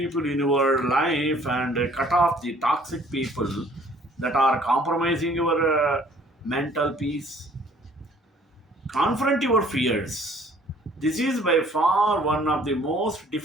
in your life and cut off the toxic people that are compromising your mental peace. Confront your fears. This is by far one of the most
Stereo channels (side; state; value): both; normal; correlation 0.57